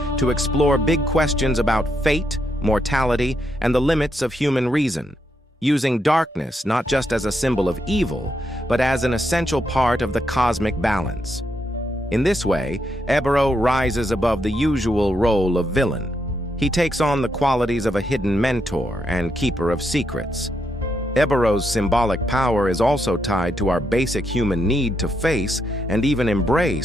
to explore big questions about fate, mortality, and the limits of human reason, using darkness not just as a symbol of evil, but as an essential part of the cosmic balance. In this way, Ébero rises above the usual role of villain. He takes on the qualities of a hidden mentor and keeper of secrets. Ébero's symbolic power is also tied to our basic human need to face and even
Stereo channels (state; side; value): normal; both; correlation 0.80